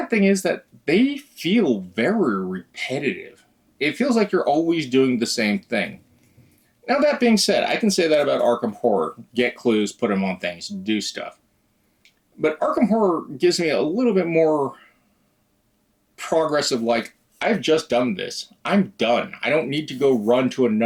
thing is that they feel very repetitive. It feels like you're always doing the same thing. Now that being said, I can say that about Arkham Horror. Get clues, put them on things, do stuff. But Arkham Horror gives me a little bit more progress of like, I've just done this. I'm done. I don't need to go run to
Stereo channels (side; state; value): both; identical; correlation 1.00